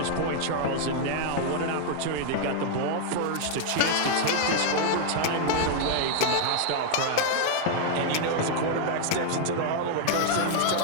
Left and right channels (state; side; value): different; both; correlation 0.00